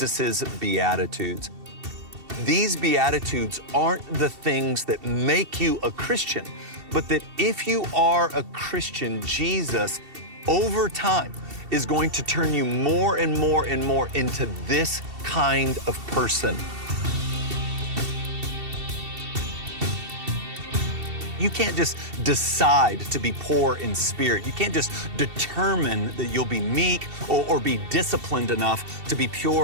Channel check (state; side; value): late; left; 2.7 ms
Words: Beatitudes. These Beatitudes aren't the things that make you a Christian, but that if you are a Christian, Jesus, over time, is going to turn you more and more and more into this kind of person. You can't just decide to be poor in spirit. You can't just determine that you'll be meek or be disciplined enough to be